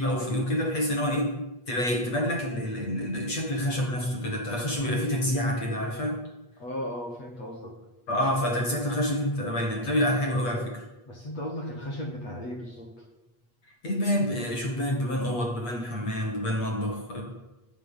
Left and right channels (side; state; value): right; late; 8.3 ms